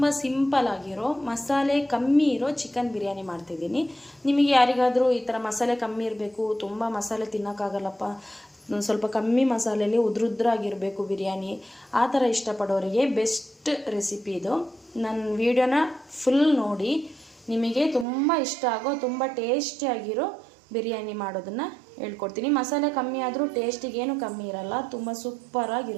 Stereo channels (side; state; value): left; drops out; at 18.1 s